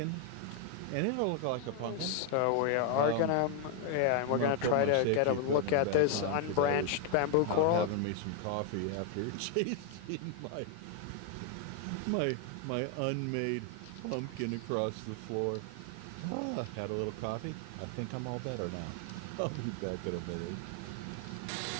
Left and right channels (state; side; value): different; both; correlation 0.00